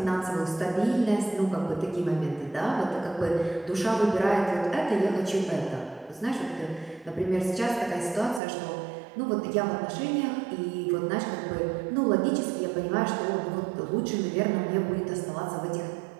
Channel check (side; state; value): left; drops out; at 8.4 s